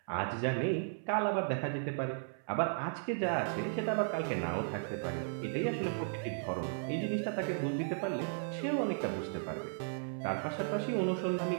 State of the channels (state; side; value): silent; left; 54 dB below the other